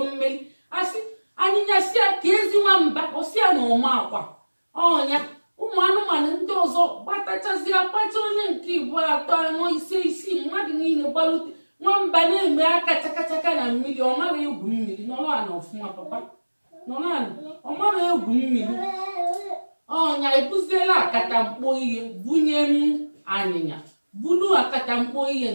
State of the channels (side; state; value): both; inverted; correlation -1.00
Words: mmeri. Asị anyịnya si ya ka ezi nwamba osia na ụma akwa ọnya. Ụmụ anụmanụ ndị ọzọ gbatachazie akpacha onye nke igbo atọ anọ ise isii mmadụ niile gbalute. Nwamba na-eme aka chakachaka na mmiri. Ọ mara egwu mmiri. Nọrọ ala ọfụma papa, nọrọ ala. Ọ mara egwu mmiri. Ọnya ebuziela akatamkpo ihe bunye m anyịnya, bulu akatamkpo ihe